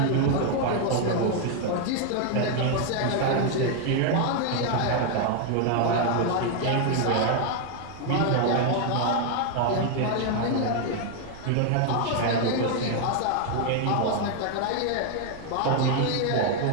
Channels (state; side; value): different; both; correlation 0.00